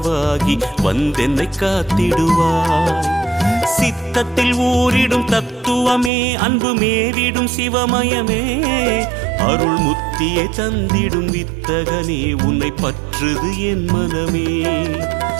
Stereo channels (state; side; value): drops out; left; at 6.1 s